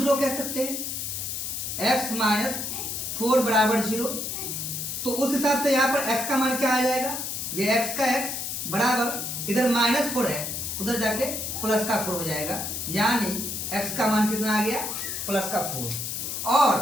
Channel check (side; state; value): left; noise; hiss, 4 dB below the sound